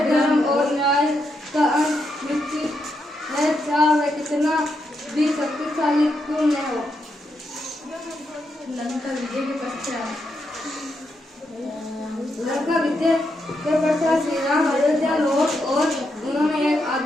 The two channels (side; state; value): both; normal; correlation 0.82